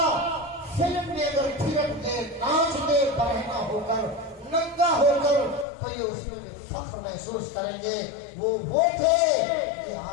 فلم میں اگر تھرک دے, ناچ دے, برہنہ ہو کر, ننگا ہو کر, تو یہ اس میں فخر محسوس کریں گے. وہ تھے کہ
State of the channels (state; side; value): drops out; right; at 5.7 s